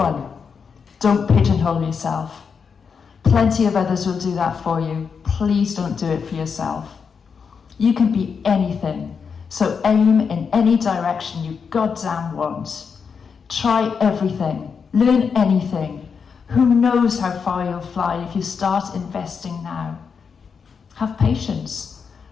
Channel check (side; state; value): right; quieter; 6.0 dB